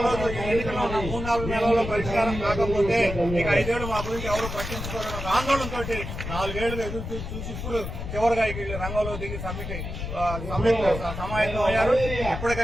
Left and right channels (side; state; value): left; noise; rumble, 6 dB below the sound